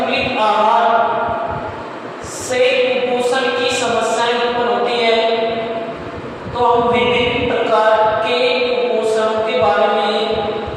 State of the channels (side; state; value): both; identical; correlation 1.00